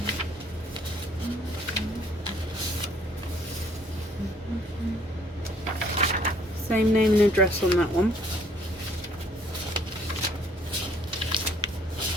Same name and address on that one.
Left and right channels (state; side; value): normal; both; correlation 0.61